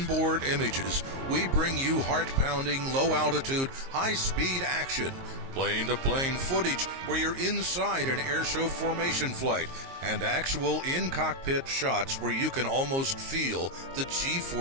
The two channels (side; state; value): left; late; 22 ms